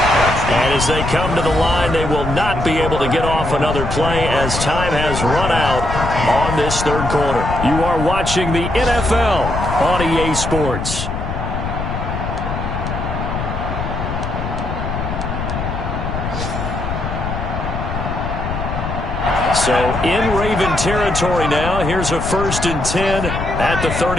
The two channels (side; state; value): left; noise; rumble, 4 dB below the sound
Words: And as they come to the line, they will not be able to get off another play as time has run out on this third quarter. You are watching the NFL on EA Sports. So in Raven territory now. Here's a 1st and 10 at the